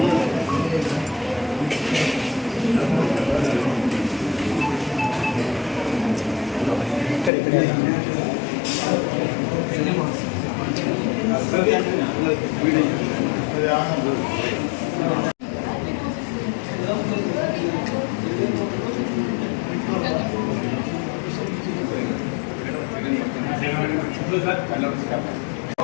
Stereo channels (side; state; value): right; drops out; at 7.3 s